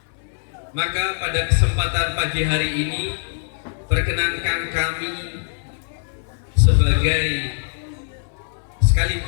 Maka pada kesempatan pagi hari ini perkenankan kami sebagai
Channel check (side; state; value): right; silent; 64 dB below the other